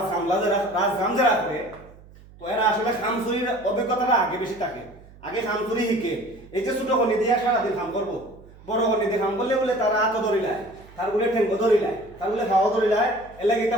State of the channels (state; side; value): noise; right; hum, 22 dB below the sound